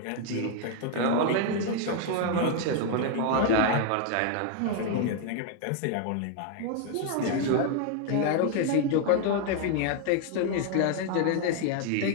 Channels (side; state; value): both; different; correlation 0.00